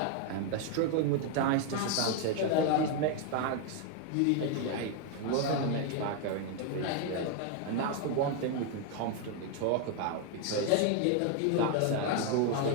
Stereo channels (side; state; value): both; different; correlation 0.01